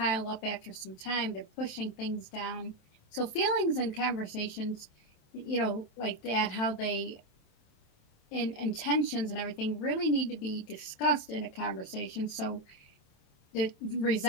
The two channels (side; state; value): right; late; 27 ms